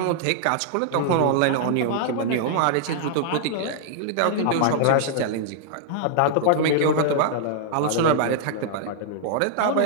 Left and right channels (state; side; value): different; both; correlation -0.01